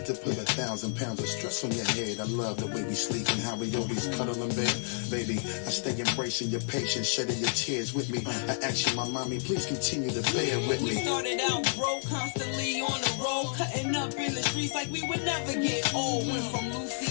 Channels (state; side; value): silent; right; digital silence